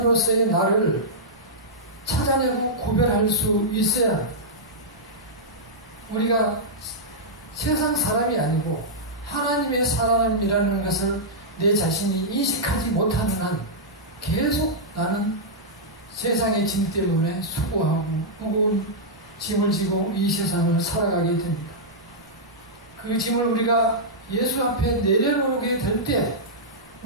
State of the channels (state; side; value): normal; both; correlation -0.10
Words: 나를 찾아내고 구별할 수 있어야 합니다. 우리가 세상 사람이 아니고 하나님의 사람이라는 것을 내 자신이 인식하지 못하는 한 계속 나는 세상의 짐 때문에 수고하고 무거운 짐을 지고 이 세상을 살아가게 됩니다. 그 짐을 우리가 예수 앞에 내려놓게 될 때